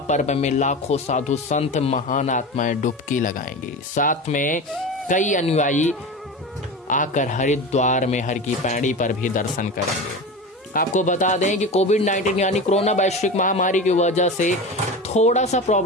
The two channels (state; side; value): normal; both; correlation 0.28